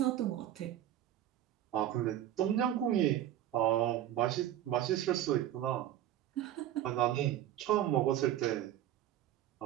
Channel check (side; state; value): left; quieter; 12.1 dB